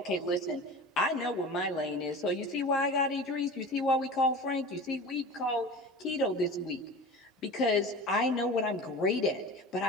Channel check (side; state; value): both; normal; correlation 0.35